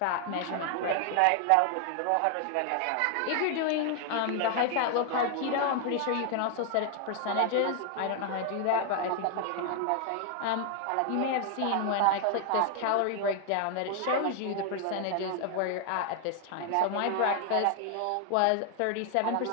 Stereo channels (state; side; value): different; both; correlation 0.00